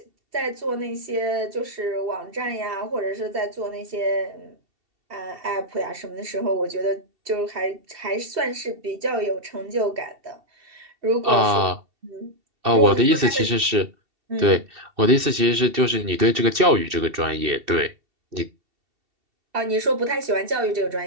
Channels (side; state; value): left; late; 2.5 ms